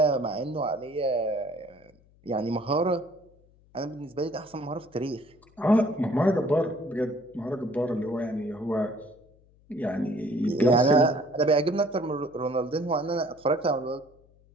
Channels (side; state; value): left; noise; hum, 30 dB below the sound